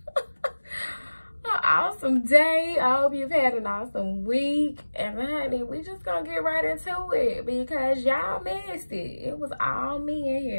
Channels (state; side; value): inverted; both; correlation -1.00